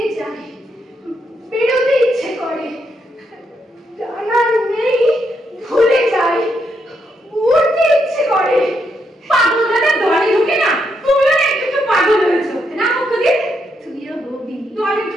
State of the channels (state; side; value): normal; both; correlation 0.78